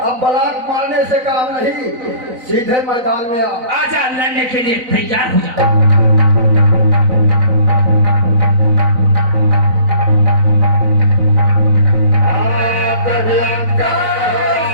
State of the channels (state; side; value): late; left; 4.0 ms